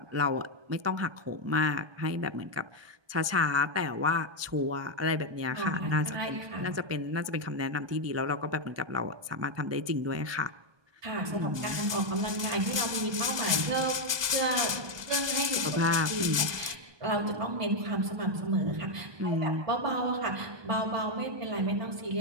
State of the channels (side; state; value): left; late; 1.2 ms